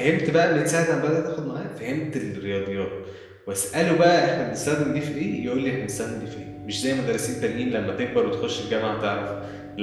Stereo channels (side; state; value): both; identical; correlation 1.00